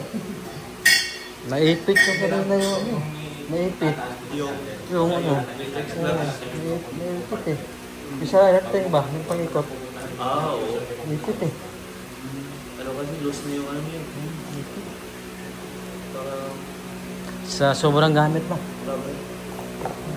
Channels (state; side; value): identical; both; correlation 1.00